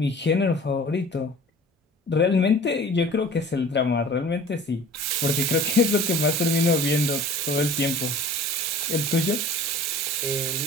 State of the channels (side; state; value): both; normal; correlation 0.44